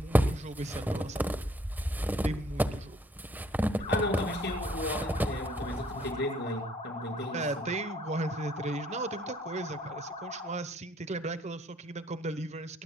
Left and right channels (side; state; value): both; normal; correlation 0.63